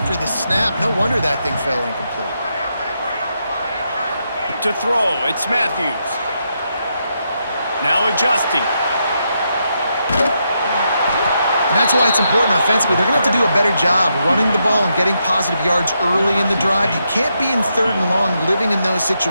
the snap. No wonder that thing fell incomplete. To throw, it's Matthews. Now adjusting. And that's why it's important offensively. They're going to have to do a better job running the ball and getting positive yards early in the drive. You can't be in third and long living in those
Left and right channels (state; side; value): inverted; both; correlation -0.81